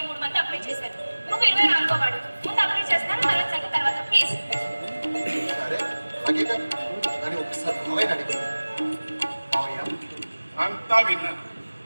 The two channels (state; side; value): inverted; both; correlation -1.00